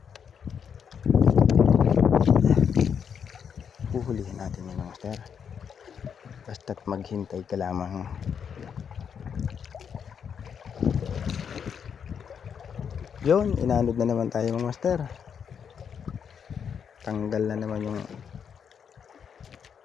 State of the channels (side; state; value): right; quieter; 7.3 dB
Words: Huhulihin natin yun mga master. Basta't maghintay ka lamang. Yun, inanod na naman tayo mga master. Tanggal na naman yung